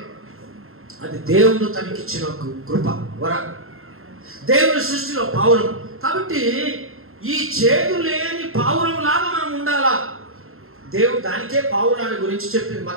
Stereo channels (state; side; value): late; left; 0.61 ms